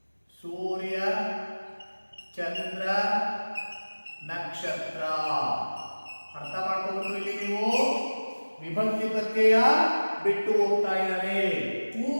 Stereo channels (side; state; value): both; inverted; correlation -1.00